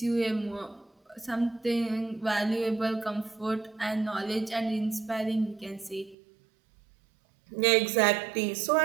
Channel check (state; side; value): drops out; left; at 6.2 s